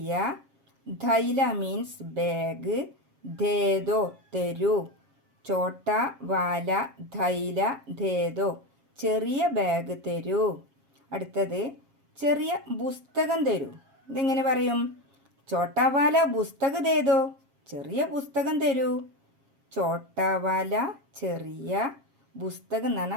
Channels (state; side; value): late; left; 7.4 ms